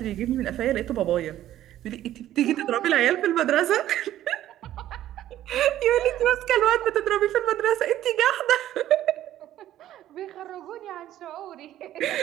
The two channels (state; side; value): quieter; left; 12.9 dB